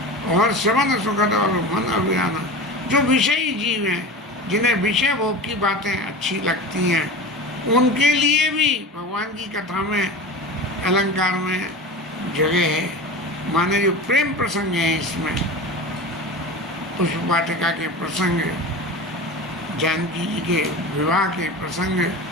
और श्रवण सुखद और मन अभिराना। जो विषयी जीव हैं, जिन्हें विषय भोग की बातें अच्छी लगती हैं, उनके लिए भी भगवान की कथा में अलंकार में जगह है। माने जो प्रेम प्रसंग है इसमें, पुष्प वाटिका के प्रसंग, जानकी जी के विवाह के प्रसंग,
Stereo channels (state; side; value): normal; both; correlation 0.30